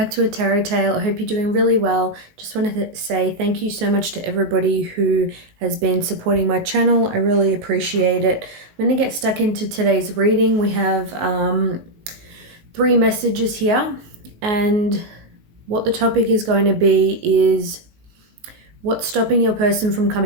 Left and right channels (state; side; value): late; left; 19 ms